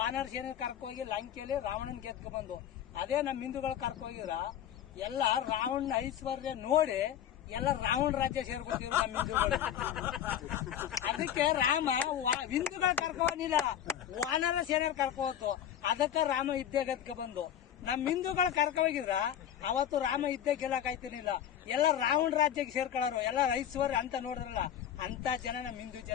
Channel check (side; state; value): right; quieter; 10.2 dB